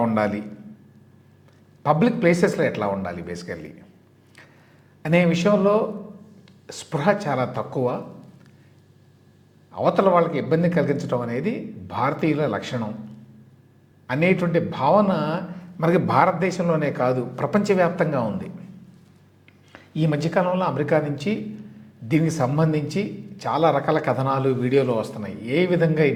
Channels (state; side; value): identical; both; correlation 1.00